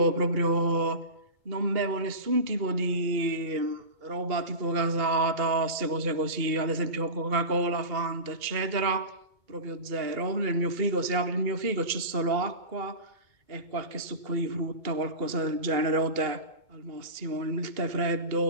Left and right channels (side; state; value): left; late; 2.8 ms